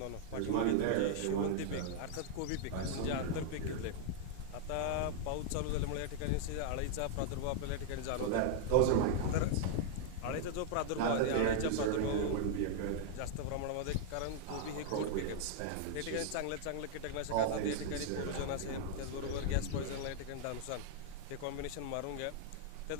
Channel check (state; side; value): different; both; correlation -0.01